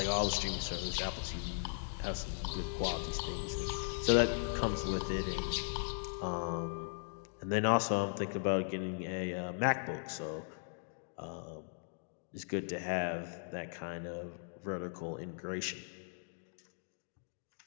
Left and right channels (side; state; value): right; silent; digital silence